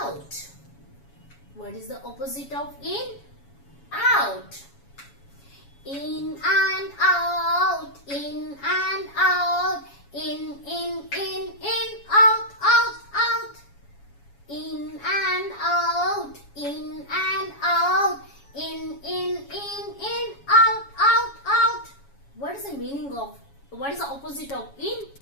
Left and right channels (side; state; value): right; late; 7.2 ms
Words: What is the opposite of in? Out. In and out. In and out. In, out, out, out. In and out. In and out. In, out, out, out. What is the meaning of, what is the opposite of in?